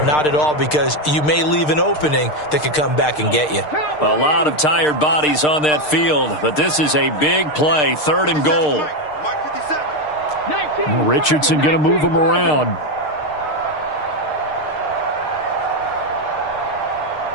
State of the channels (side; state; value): right; late; 6.6 ms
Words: not at all, because you may leave an opening that could come back and get you. A lot of tired bodies on that field, but this is a big play, 3rd and goal. Richardson going to move him around.